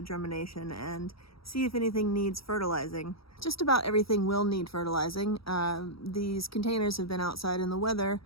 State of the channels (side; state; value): right; late; 0.75 ms